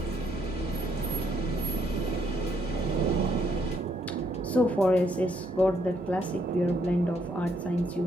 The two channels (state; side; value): noise; right; hum, 22 dB below the sound